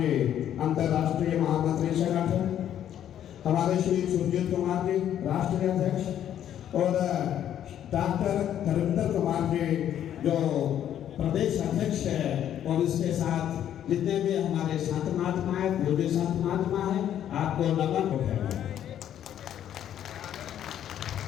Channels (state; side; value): quieter; right; 10.5 dB